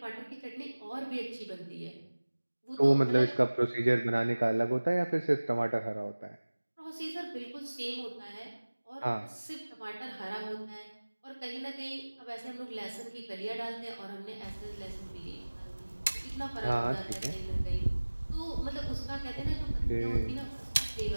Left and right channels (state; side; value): inverted; both; correlation -1.00